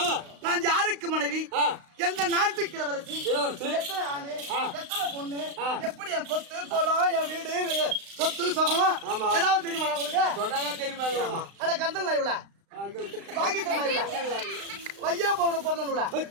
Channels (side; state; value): left; late; 35 ms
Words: நான் யாருக்கு மனைவி, எந்த நாட்டுக்கு இளவரசி, எத்தனை ஆணு, எத்தனை பொண்ணு, எப்படி என் சொத்து கோலம், என் வீடு, சொத்து சுகம் ஏதாவது தெரியுமா உங்களுக்கு? சொன்னாதான் தெரியுமா? அட கந்தல் இவ்வளோ வாங்கி தரலாம். வையா போன பிறந்தவங்களா